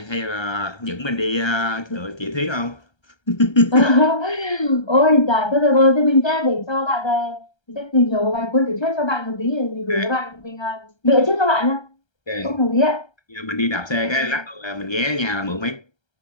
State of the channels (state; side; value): late; right; 1.3 ms